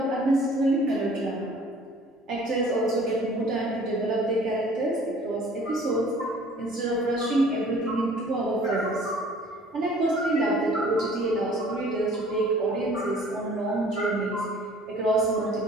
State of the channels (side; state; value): both; normal; correlation 0.52